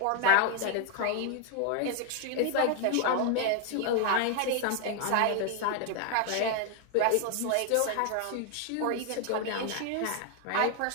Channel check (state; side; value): different; both; correlation 0.00